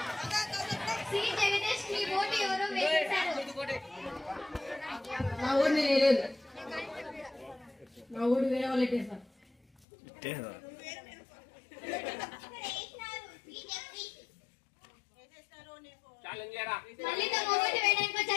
ఓటు ఎవరో వేసేశారు. నా ఊరిని లేదు, నా ఊరు వేరే వాళ్ళు ఎట్టేస్తారు. మళ్ళీ తమ ఓటు వేయడానికి వచ్చే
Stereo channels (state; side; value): drops out; right; at 9.9 s